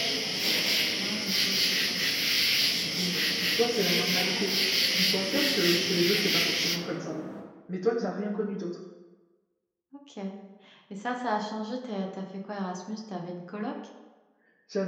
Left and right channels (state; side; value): identical; both; correlation 1.00